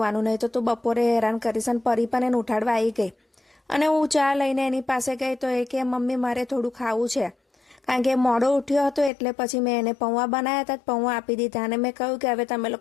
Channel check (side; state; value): right; drops out; at 9.1 s